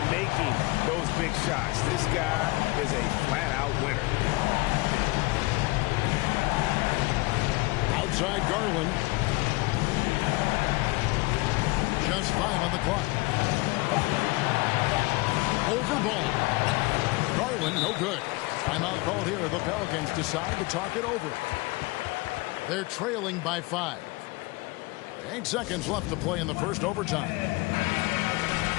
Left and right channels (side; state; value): right; quieter; 23.3 dB